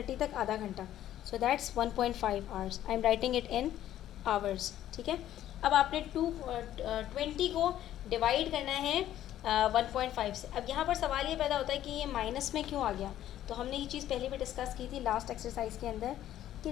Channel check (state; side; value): quieter; right; 12.3 dB